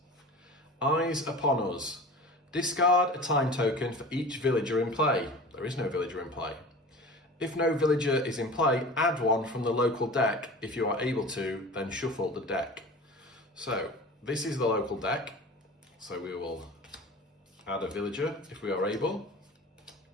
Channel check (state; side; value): normal; both; correlation 0.37